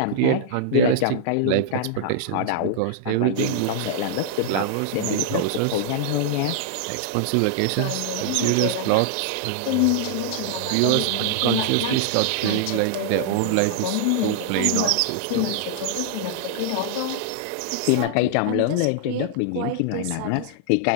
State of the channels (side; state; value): both; different; correlation -0.01